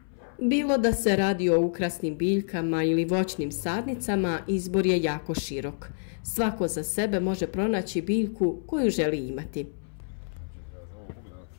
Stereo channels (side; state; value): right; silent; 60 dB below the other